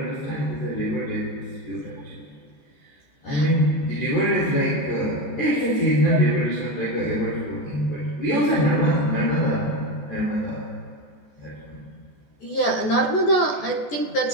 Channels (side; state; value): right; late; 14 ms